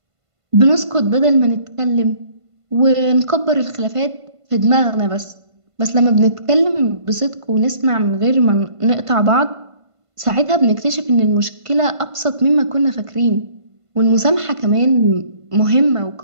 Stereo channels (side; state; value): left; late; 1.5 ms